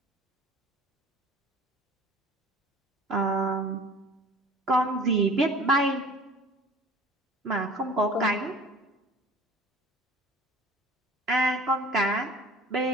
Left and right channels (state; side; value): normal; both; correlation 0.45